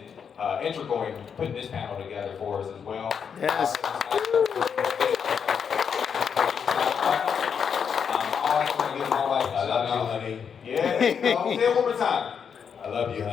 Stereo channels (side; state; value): right; quieter; 7.0 dB